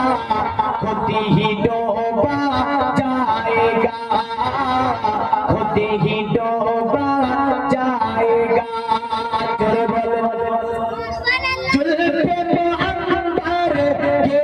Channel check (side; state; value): both; identical; correlation 1.00